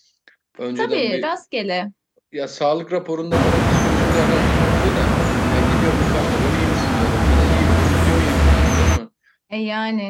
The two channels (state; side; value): identical; both; correlation 1.00